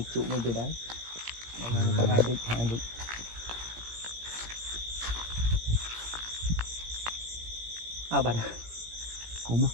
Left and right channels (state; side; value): late; left; 17 ms